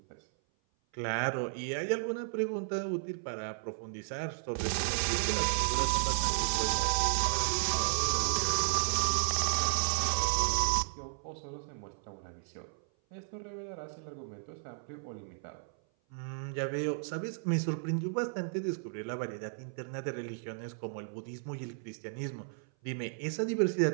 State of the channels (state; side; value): silent; left; 55 dB below the other